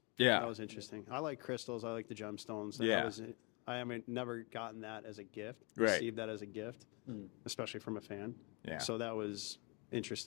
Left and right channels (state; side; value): quieter; right; 31.0 dB